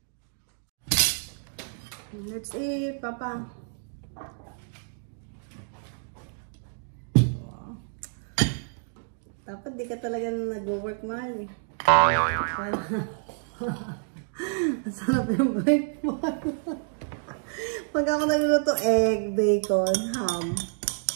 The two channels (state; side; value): silent; left; digital silence